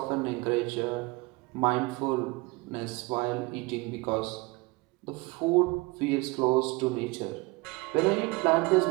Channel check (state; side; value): quieter; left; 24.4 dB